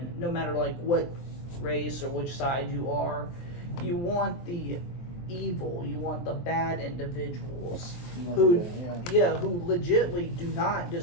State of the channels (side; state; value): right; late; 23 ms